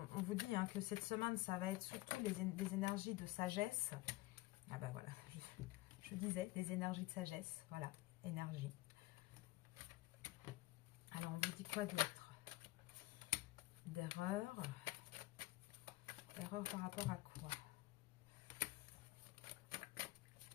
on vous dit que cette semaine, ça va être surtout des énergies de sagesse. Ah ben voilà, je disais, des énergies de sagesse. Voilà, énergie. Alors, on vous dit quoi d'autre? D'erreur. Erreur par rapport à quoi?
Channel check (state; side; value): quieter; right; 19.5 dB